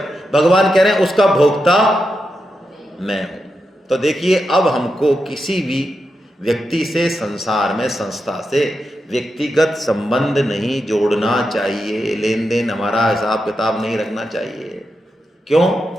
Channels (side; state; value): both; normal; correlation 0.87